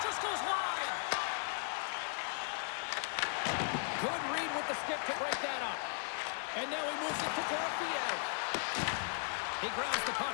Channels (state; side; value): silent; right; 53 dB below the other